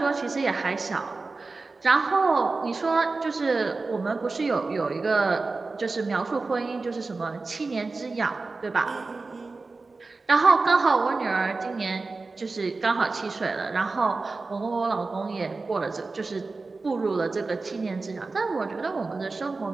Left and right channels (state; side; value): quieter; left; 3.8 dB